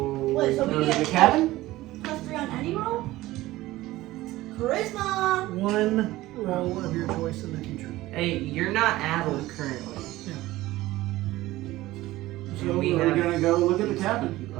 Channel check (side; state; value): left; quieter; 17.3 dB